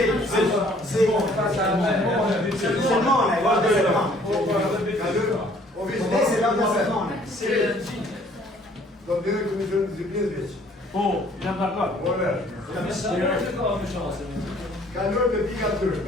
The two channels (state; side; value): normal; both; correlation 0.58